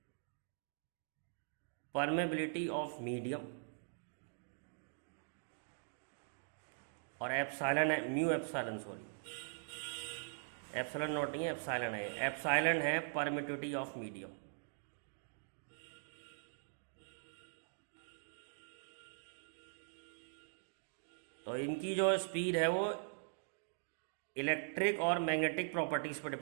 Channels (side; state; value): left; silent; digital silence